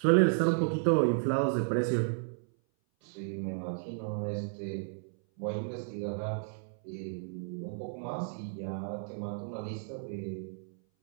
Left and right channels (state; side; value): silent; left; 56 dB below the other